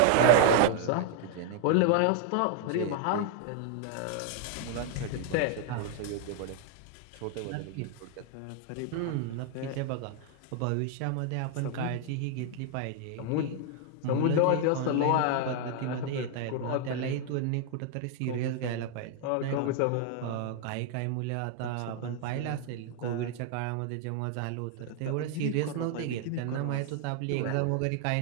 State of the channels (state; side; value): different; both; correlation 0.00